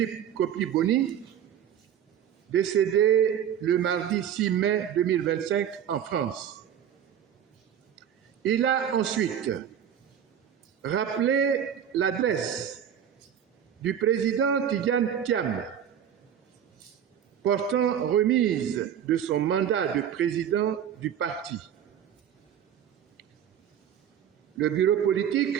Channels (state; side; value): quieter; left; 9.3 dB